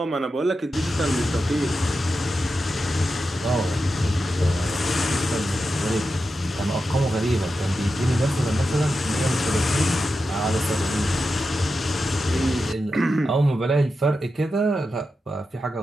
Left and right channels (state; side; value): normal; both; correlation 0.90